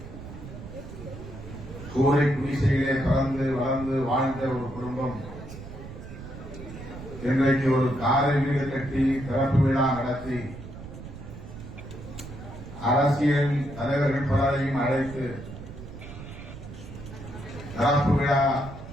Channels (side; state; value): right; noise; rumble, 12 dB below the sound